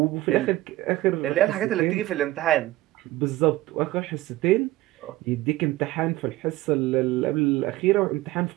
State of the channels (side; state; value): left; quieter; 17.3 dB